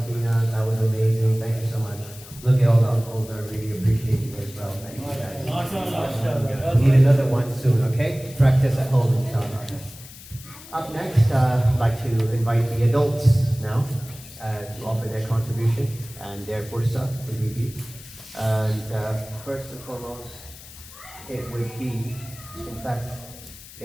That was amazing. Thank you so much. Look at all the uncles. I really appreciate you as well. Thank you guys. We need another one soon, okay? Practice at home, inshallah. Up next, I'd like to invite the adults now to offer their contribution and their fursa to be. And first and foremost, it would be, in fact,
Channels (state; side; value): noise; left; hiss, 18 dB below the sound